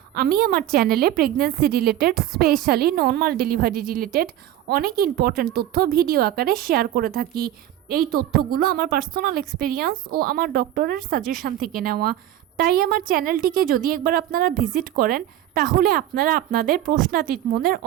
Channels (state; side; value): quieter; left; 12.5 dB